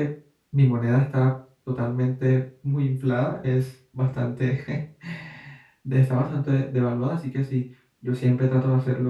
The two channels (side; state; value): both; identical; correlation 1.00